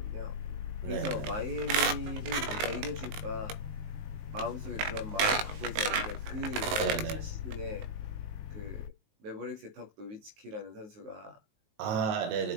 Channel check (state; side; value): late; left; 19 ms